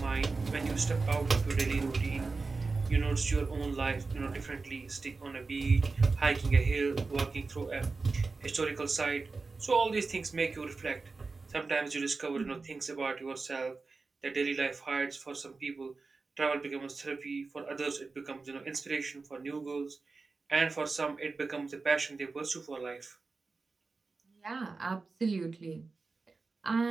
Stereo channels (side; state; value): left; quieter; 4.0 dB